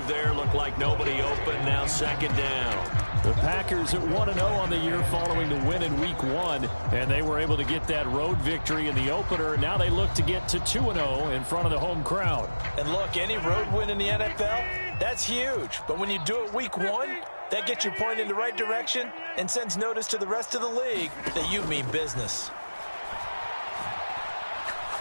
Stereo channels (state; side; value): inverted; both; correlation -1.00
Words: there. Looked like nobody open. Now 2nd down. The Packers at 1-0 on the year following the win in Week 1. And they were able to get that road victory in the opener. Now they look to get to 2-0 in front of the home crowd. And look, any road win in the NFL, that's huge. But when you do it Week 1, that gets you pointed in the right direction and sends notice to the rest of the league that you mean business.